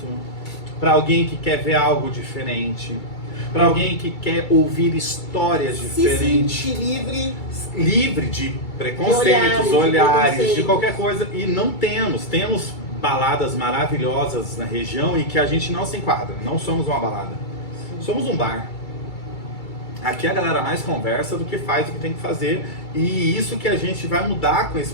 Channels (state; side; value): late; right; 2.3 ms